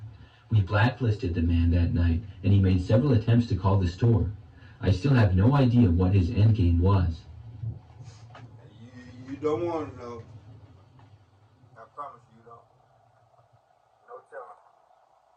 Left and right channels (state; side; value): identical; both; correlation 1.00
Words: We blacklisted the man that night, and he made several attempts to call the store. I still have no idea what his endgame was. You don't want to know. I promise you don't. No telling.